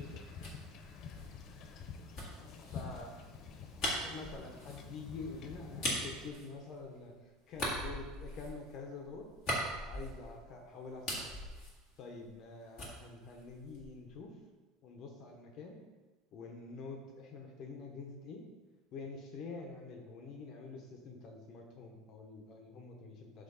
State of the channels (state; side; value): normal; both; correlation 0.34